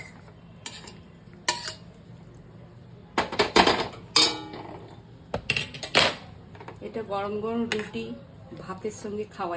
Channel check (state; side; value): identical; both; correlation 1.00